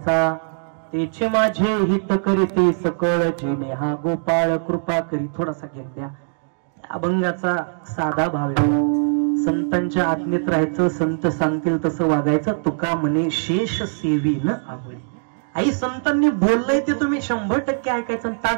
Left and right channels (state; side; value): silent; left; digital silence